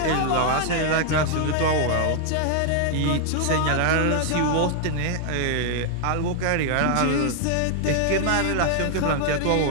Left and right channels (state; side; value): different; both; correlation 0.00